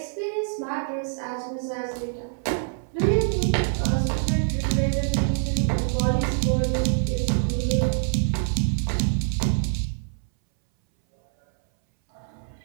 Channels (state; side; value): silent; left; 62 dB below the other